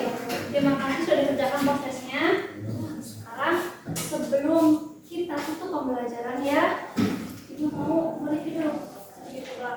terima kasih sudah dikerjakan prosesnya. Sekarang sebelum kita tutup pembelajaran ya, ibu mau mereview dulu sedikit ke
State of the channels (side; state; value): both; identical; correlation 1.00